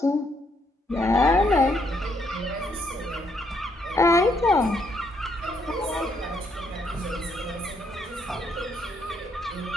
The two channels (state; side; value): normal; both; correlation 0.73